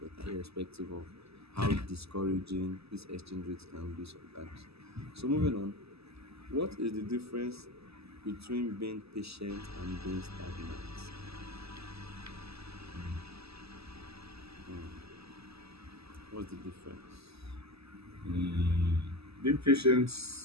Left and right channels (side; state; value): left; late; 0.78 ms